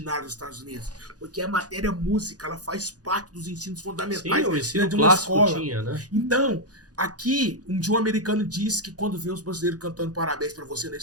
nos Estados Unidos? Porque a matéria música, ela faz parte dos ensinos fundamentais. Sim, o ensino de uma clássico escola. tinha, né? Então, aqui, um dia um americano disse que quando vê os brasileiros cantando parabéns pra você na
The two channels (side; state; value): left; late; 0.68 ms